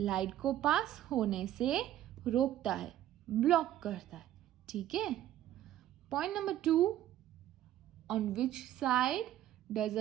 को pass होने से रोकता है, ब्लॉक करता है. ठीक है. Point number 2. On which side does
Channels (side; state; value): left; quieter; 12.6 dB